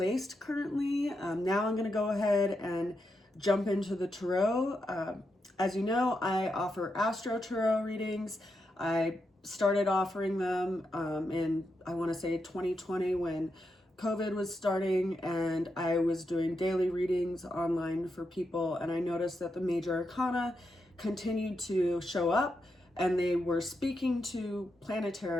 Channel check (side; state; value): both; normal; correlation 0.85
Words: currently. Now I'm going to go ahead and jump into the tarot. As you know, I offer AstroTarot readings. I started offering them in, I want to say 2020, when COVID was starting, and I was doing daily readings online for people. And I noticed that the major arcana continued to show up, and they were speaking to